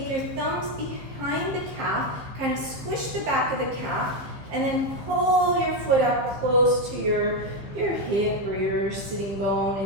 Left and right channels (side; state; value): left; late; 15 ms